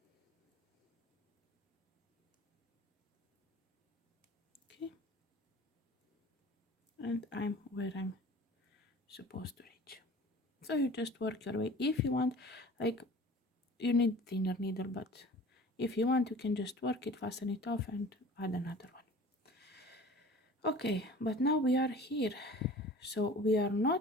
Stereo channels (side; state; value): both; normal; correlation 0.43